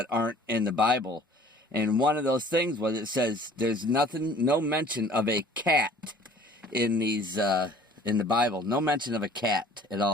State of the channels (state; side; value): normal; both; correlation 0.51